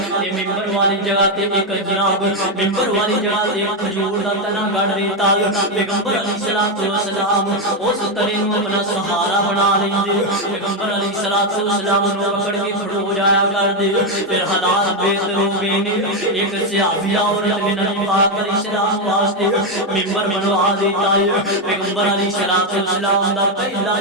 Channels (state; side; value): normal; both; correlation 0.05